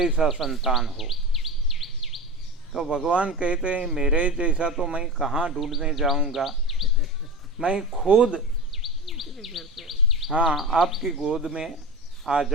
संतान हो। तो भगवान कहते हैं मेरे जैसा तो मैं कहाँ ढूंढने जाऊंगा, मैं खुद हाँ आपकी गोद में आ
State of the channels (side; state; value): both; normal; correlation 0.26